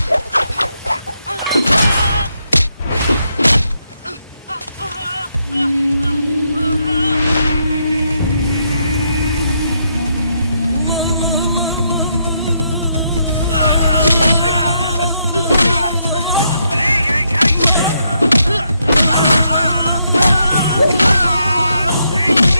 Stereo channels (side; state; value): both; inverted; correlation -0.78